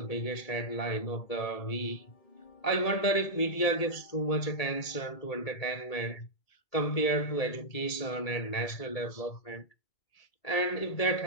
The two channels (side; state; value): right; late; 2.3 ms